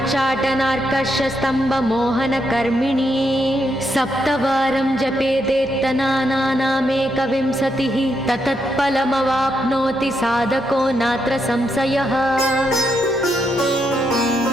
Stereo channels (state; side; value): noise; right; hum, 29 dB below the sound